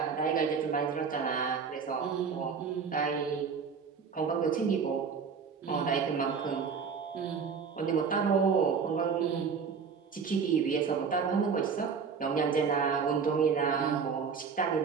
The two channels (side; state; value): left; quieter; 5.9 dB